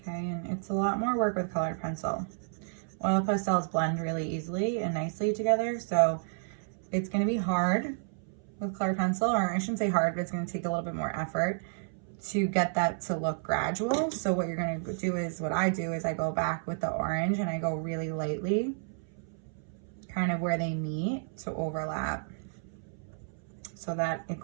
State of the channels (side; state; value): left; silent; 57 dB below the other